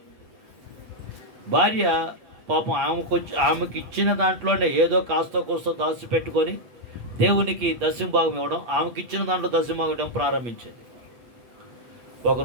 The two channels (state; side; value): late; left; 8.2 ms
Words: భార్య పాపం ఆమెకి ఇచ్చిన దాంట్లోనే ఏదో కాస్త కోస్తో దాచిపెట్టుకొని దేవునికి దశంభాగం ఇవ్వడం, ఆమెకి ఇచ్చిన దాంట్లో దశంభాగం ఇవ్వడం ప్రారంభించింది. ఒక